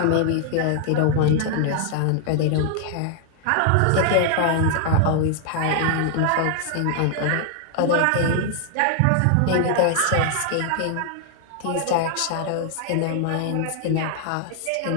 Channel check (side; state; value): both; different; correlation 0.00